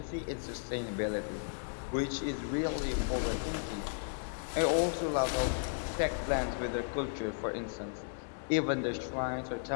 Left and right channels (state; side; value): silent; right; digital silence